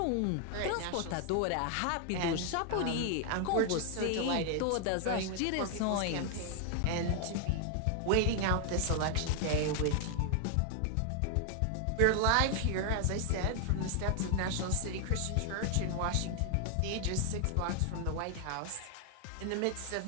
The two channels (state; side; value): different; both; correlation 0.00